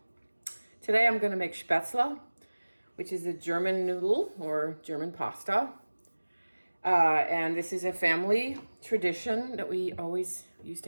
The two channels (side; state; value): both; inverted; correlation -1.00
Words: Today I'm going to make Spätzle, which is a German noodle or German pasta. And this is a family tradition that we always used